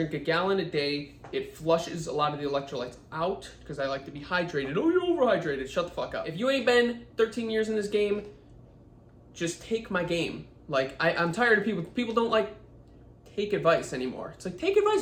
a gallon a day. It flushes a lot of the electrolytes out because I like to be hydrated. Oh, you're overhydrated. Shut the fuck up. If you ain't been 13 years in this game, just take my game. Like, I'm tired of people. People don't like take advice anymore. It's like, take advice,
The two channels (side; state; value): both; identical; correlation 1.00